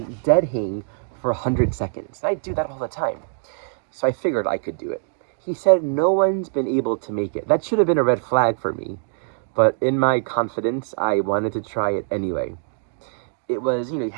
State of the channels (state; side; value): silent; left; digital silence